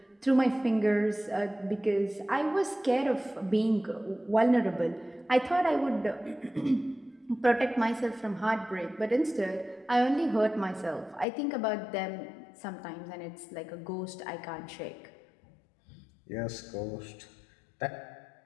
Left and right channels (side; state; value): right; drops out; at 11.2 s